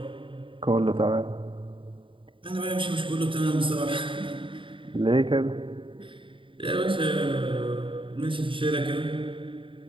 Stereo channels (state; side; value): late; left; 0.25 ms